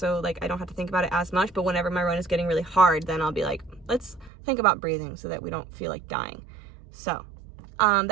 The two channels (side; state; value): left; drops out; at 4.3 s